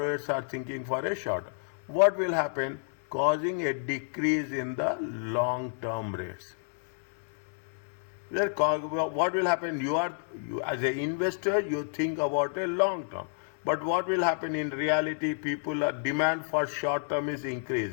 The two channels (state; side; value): silent; right; digital silence